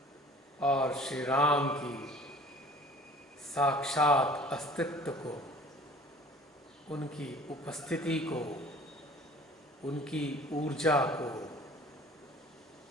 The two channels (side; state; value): both; normal; correlation 0.48